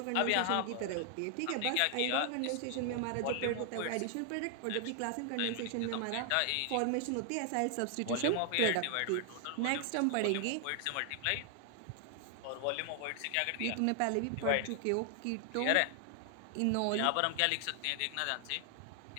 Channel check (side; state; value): both; different; correlation 0.00